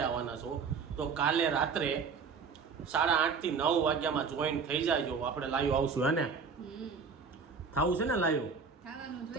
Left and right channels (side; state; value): left; quieter; 5.4 dB